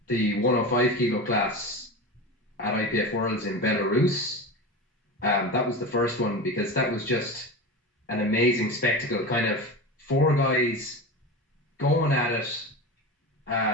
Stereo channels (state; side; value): normal; both; correlation 0.26